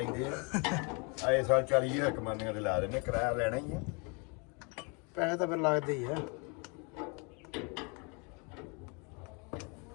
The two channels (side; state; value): right; quieter; 32.8 dB